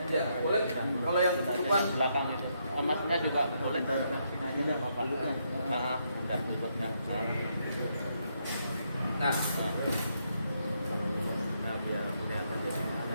Ya, boleh. Kalau yang ketutupan Belakang itu. Emasnya juga boleh. Udah Bapak. Udah tutupnya. Nah, biar kelihatan deh.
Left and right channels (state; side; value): inverted; both; correlation -0.77